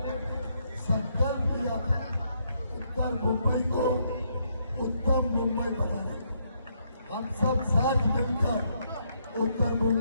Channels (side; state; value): both; inverted; correlation -0.75